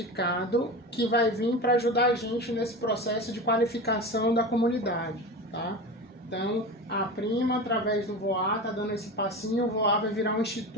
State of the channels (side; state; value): both; normal; correlation 0.28